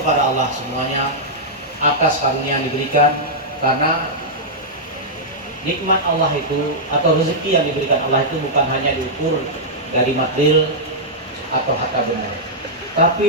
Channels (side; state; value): both; normal; correlation -0.08